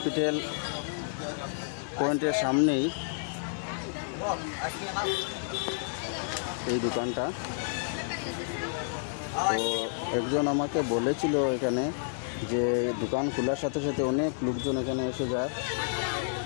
পয়েন্টের সামনেই এই দোকানটা। তো একজন আমাকে বলেছিল এখানে যে দোকান খোলার সাথে সাথে অনেক লোকজন এখানে এসে যায়,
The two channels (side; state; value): right; silent; 58 dB below the other